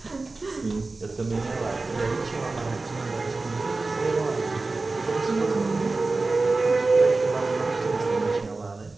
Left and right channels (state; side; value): quieter; left; 3.5 dB